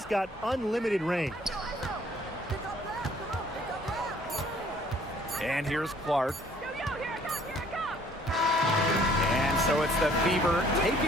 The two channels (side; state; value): both; normal; correlation 0.59